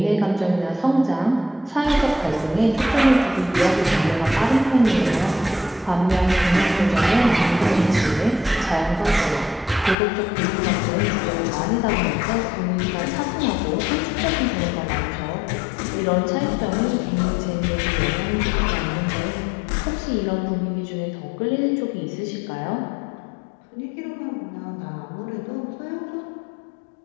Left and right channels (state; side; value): drops out; right; at 10.0 s